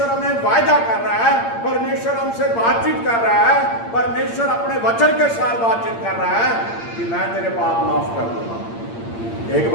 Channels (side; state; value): right; late; 8.7 ms